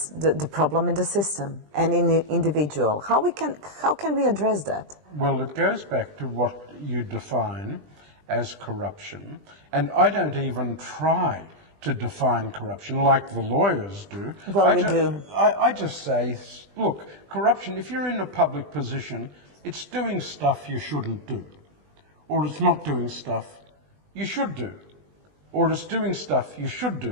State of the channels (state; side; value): late; left; 20 ms